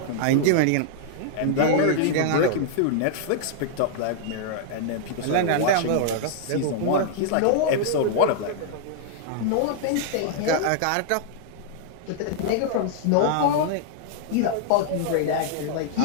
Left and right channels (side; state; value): both; different; correlation -0.01